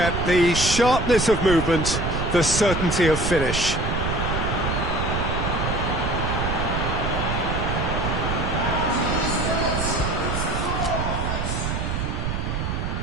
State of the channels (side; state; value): right; noise; rumble, 2 dB below the sound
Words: the sharpness of movement, the certainty of finish.